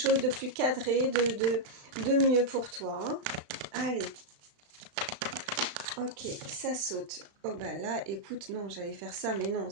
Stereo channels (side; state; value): left; late; 35 ms